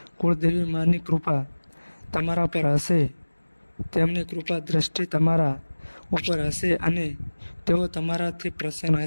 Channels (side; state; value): both; inverted; correlation -1.00